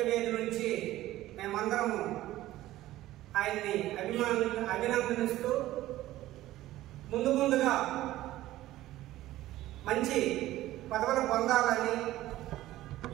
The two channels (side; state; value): left; quieter; 15.4 dB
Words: నుంచి మేమందరము ఆయన్ని అభినందనిస్తూ ముందుగా మంచి పదవులు పొందాలని